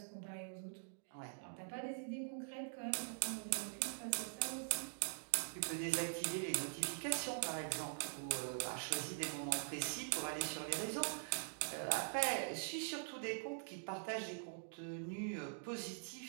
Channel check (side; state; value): left; silent; digital silence